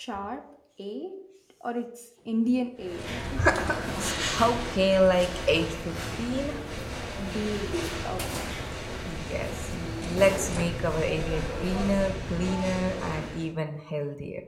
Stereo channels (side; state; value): both; identical; correlation 1.00